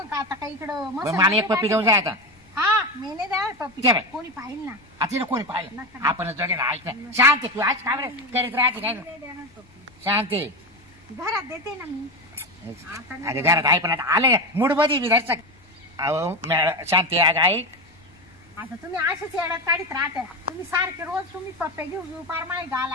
आता काही इकडं मग मसाला मला एक पप्पी घेऊन जाय आता हा मी नाही द्या पप्पी ठेव. कोणी पाहिल ना आता तिला कोणी पाहिलं नका. आपणच जोडे ना ऐक ना शांत तू आज काय बरं करीत राहते काय नाही देणार पप्पी शांत घरात देते ना मी आता नाही अरे घरात आहे पण आता आलं मूड मध्ये मी धरचा अहो शांती अगं ऐक आता तुम्ही असेच येड्यात काढीत राहता तुम्ही सारखे रोज तुम्ही पप्पे घेऊ पार माय गाल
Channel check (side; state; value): left; noise; rumble, 29 dB below the sound